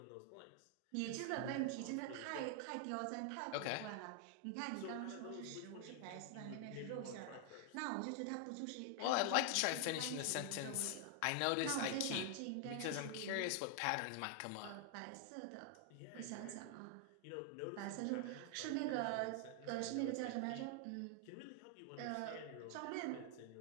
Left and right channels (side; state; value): both; different; correlation 0.00